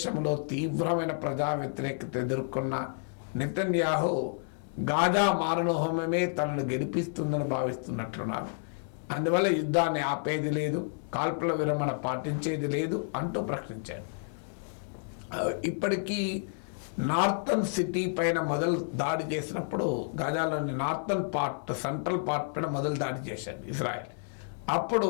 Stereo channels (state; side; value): silent; right; digital silence